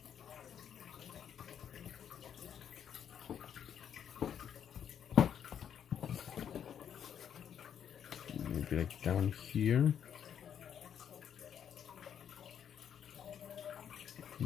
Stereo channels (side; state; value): right; quieter; 8.7 dB